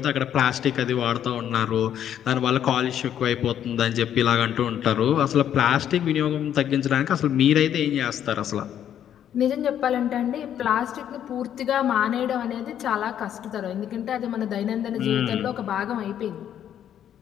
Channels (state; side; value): quieter; right; 10.0 dB